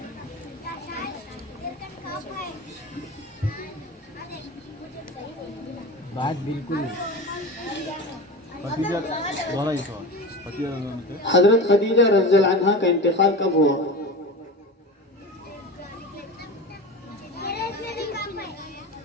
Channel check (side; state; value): both; normal; correlation 0.29